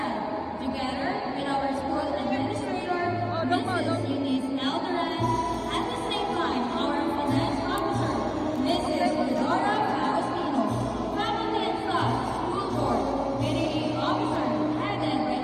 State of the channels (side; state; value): both; identical; correlation 1.00